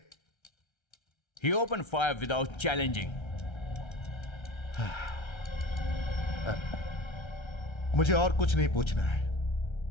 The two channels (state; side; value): late; right; 1.3 ms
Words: He opened fire without challenging. मुझे और कुछ नहीं पूछना है।